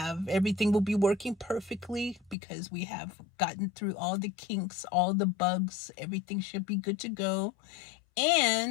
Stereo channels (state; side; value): drops out; right; at 2.4 s